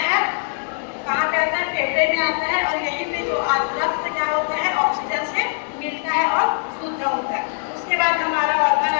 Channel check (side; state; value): right; silent; 65 dB below the other